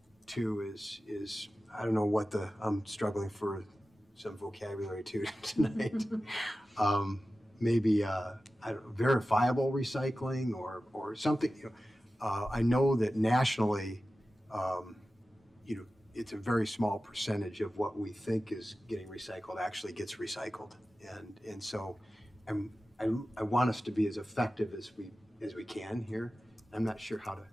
to is I don't know what I'm struggling for some vocabulary too tonight. Maybe verifiable recycling or something. I know that nationally, it's a very small percentage of what we think is getting recycled actually gets recycled, and so I want us to be as effective as we can here. I'm not sure how to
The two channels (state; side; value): normal; both; correlation 0.95